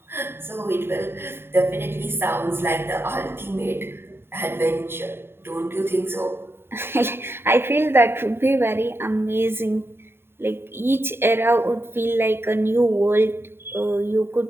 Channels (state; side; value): late; left; 0.11 ms